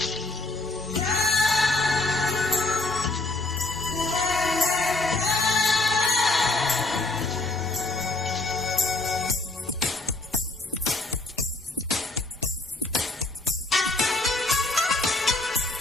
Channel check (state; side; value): quieter; right; 3.0 dB